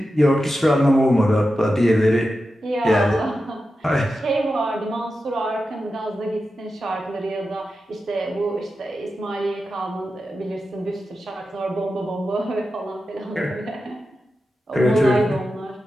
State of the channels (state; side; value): normal; both; correlation 0.91